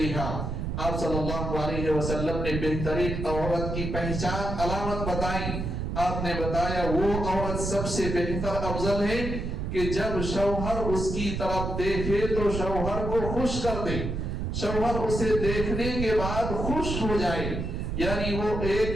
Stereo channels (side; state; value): right; noise; rumble, 3 dB below the sound